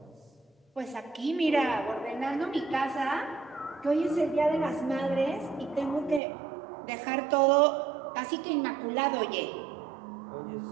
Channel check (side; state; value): left; drops out; at 6.2 s